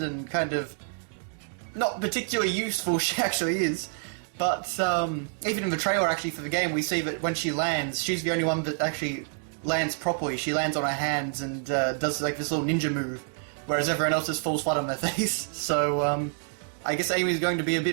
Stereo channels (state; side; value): silent; left; 60 dB below the other